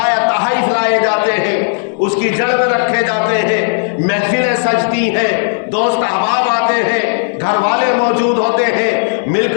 تحائف لائے جاتے ہیں، اس کی جڑ میں رکھے جاتے ہیں، محفلیں سجتی ہیں، دوست احباب آتے ہیں، گھر والے موجود ہوتے ہیں، مل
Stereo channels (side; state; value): right; silent; digital silence